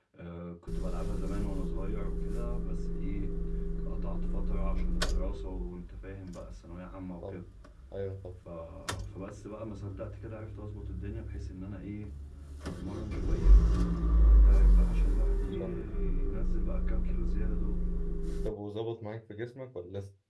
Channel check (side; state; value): both; identical; correlation 1.00